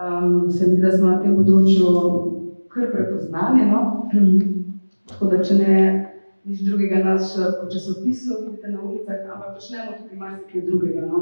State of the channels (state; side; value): inverted; both; correlation -1.00